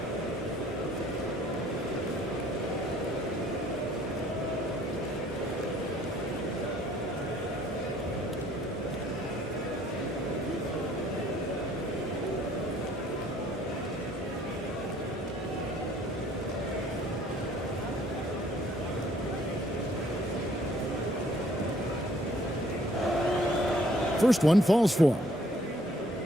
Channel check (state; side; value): normal; both; correlation 0.60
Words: First one falls for him.